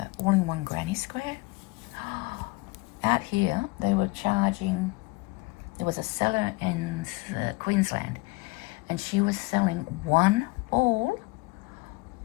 all-in-one granny square, out here they were charging, there was a seller in Queensland, and she was selling one ball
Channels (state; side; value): quieter; right; 24.6 dB